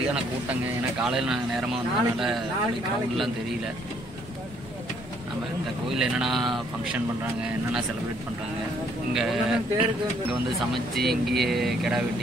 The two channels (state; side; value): normal; both; correlation 0.66